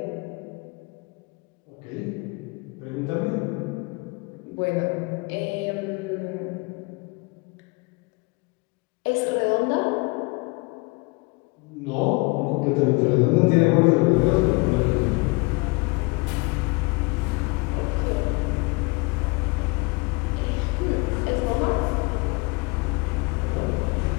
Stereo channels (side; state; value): right; quieter; 27.2 dB